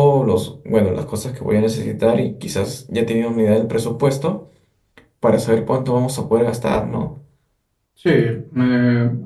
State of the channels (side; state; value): both; identical; correlation 1.00